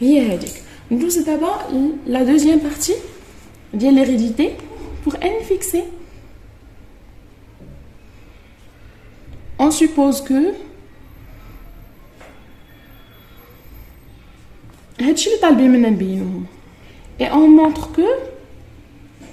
هي هذيك. ندوز دابا la deuxième partie ديال l'hérédité pour n fixé. on suppose que هادشي اللي طالبين منا نبينوه et on montre que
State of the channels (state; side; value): identical; both; correlation 1.00